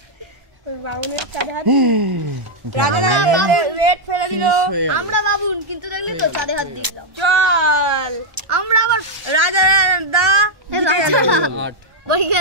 বাউনের চাঁদে হাত রেড ফেলে দিল। হয়ে গেল। আমরা বাবুন কিন্তু দেখলি তো চাঁদে হাত দিলাম। চল আমরা আবার রাজা দা রাজা আট বলি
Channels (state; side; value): late; left; 1.3 ms